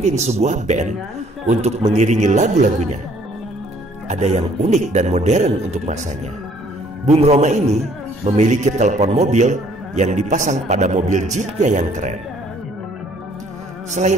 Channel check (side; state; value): both; normal; correlation 0.61